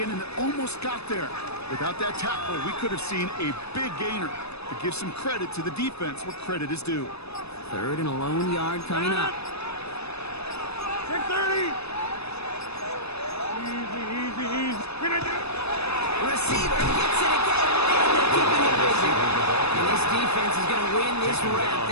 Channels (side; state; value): right; late; 0.79 ms